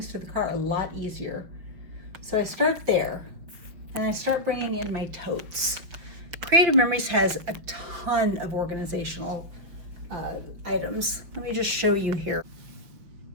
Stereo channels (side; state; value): left; late; 5.8 ms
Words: to the car a lot easier. So I start there, and I start bringing in my totes. Creative Memories has a ton of organizational items. Let me just show you here.